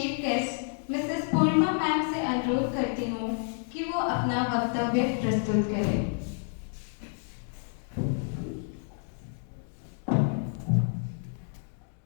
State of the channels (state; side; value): silent; right; 58 dB below the other